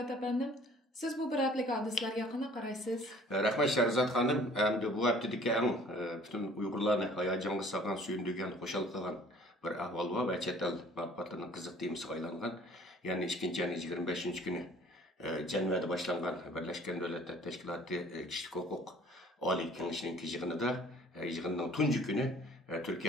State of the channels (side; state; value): both; normal; correlation 0.53